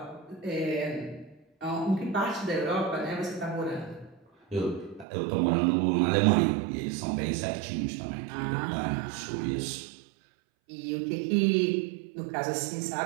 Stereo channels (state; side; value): drops out; left; at 5.1 s